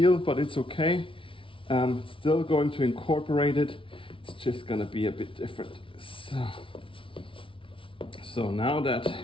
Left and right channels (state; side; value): late; right; 0.25 ms